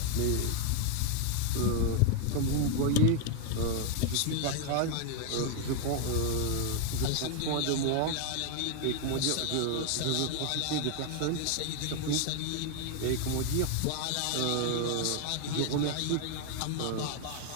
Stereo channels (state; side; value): different; both; correlation 0.00